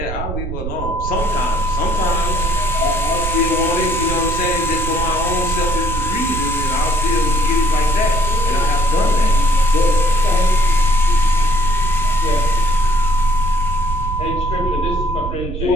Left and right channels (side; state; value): right; noise; rumble, 6 dB below the sound